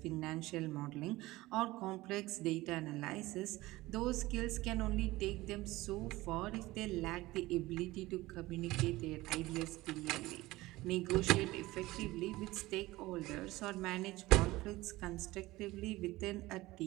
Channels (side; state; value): left; quieter; 18.9 dB